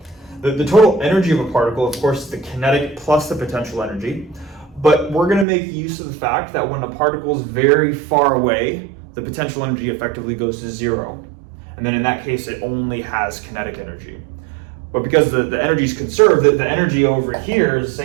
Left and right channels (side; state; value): left; drops out; at 5.5 s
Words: The total energy of a particle, of course, is the kinetic plus the potential energy. But we're going to make use of the fact that when a particle is very far away, the potential energy effectively goes to 0. And then in that case, it only has kinetic energy. But because the energy is conserved, the energy over here is the